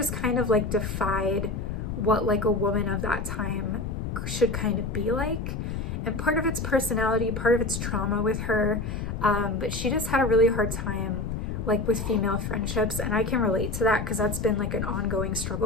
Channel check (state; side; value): noise; left; rumble, 4 dB below the sound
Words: kind of like defied what like a woman of that time should kind of be like. And part of it's personality, part of it's trauma with her, but she just had a really hard time like with female friendships, and I can relate to that because that's been like an ongoing